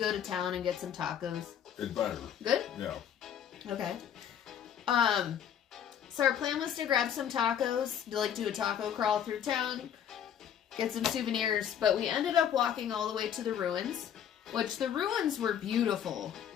to town and get some tacos. It's better. Good? Yeah. Okay. So our plan was to grab some tacos, to like do a taco crawl through town, get some souvenirs, but we ended up walking all the way to the ruins, which the ruins were beautiful.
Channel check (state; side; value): quieter; right; 9.2 dB